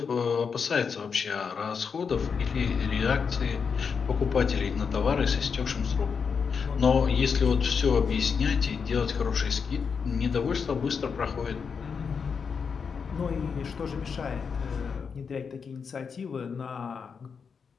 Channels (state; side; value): quieter; right; 6.0 dB